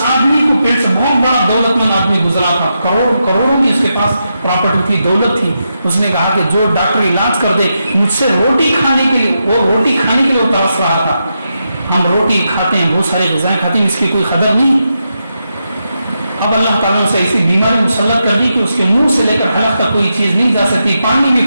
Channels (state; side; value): inverted; both; correlation -0.85